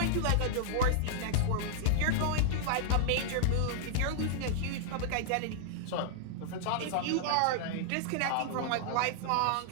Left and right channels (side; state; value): both; different; correlation -0.01